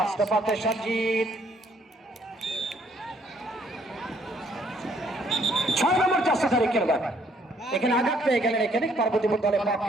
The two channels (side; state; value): both; normal; correlation 0.65